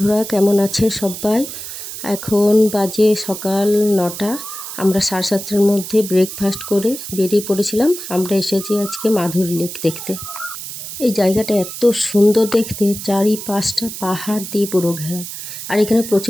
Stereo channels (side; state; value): right; noise; hiss, 9 dB below the sound